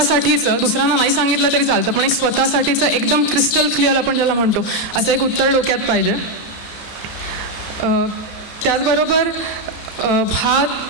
दुसऱ्यांना नाही सांगितलं तरी चालतं, पण एक स्वतःसाठीचं एकदम क्रिस्टल क्लिअर आपण ज्याला म्हणतो असं एक उत्तर डोक्यात पाहिजे. त्याचबरोबर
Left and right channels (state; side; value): late; right; 32 ms